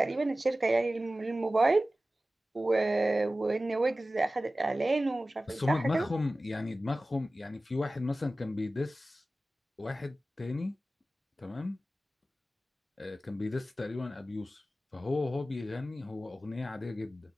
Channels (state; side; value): normal; both; correlation 0.96